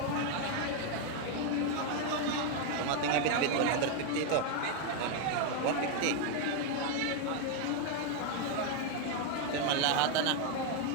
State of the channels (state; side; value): different; both; correlation 0.01